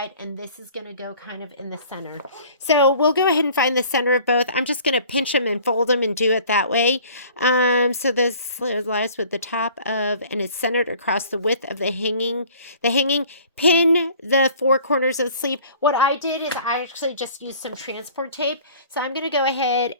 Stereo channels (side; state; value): both; inverted; correlation -0.50